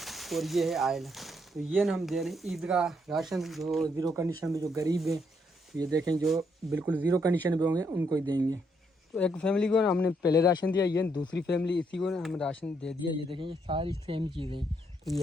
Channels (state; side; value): normal; both; correlation 0.74